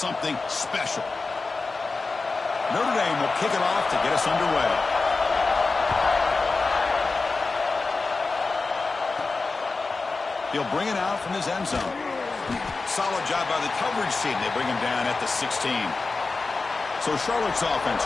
special? Notre Dame will kick it off to get us underway. He'll bring it out from his end zone. Solid job by the coverage team. They bring him down at the 16. So Charlotte's offense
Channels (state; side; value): quieter; right; 3.9 dB